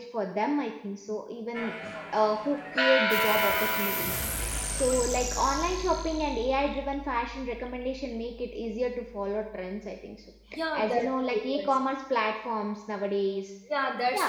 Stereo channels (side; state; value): both; identical; correlation 1.00